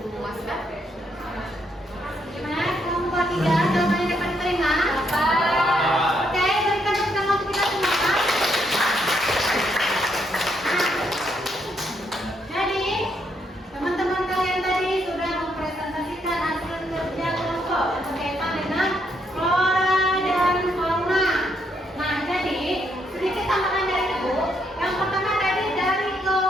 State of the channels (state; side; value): normal; both; correlation 0.75